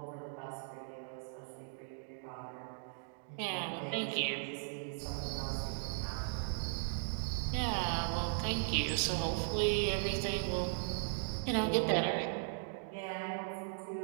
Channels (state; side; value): silent; left; digital silence